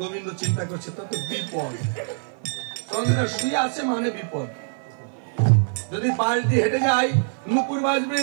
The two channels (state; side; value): silent; left; 57 dB below the other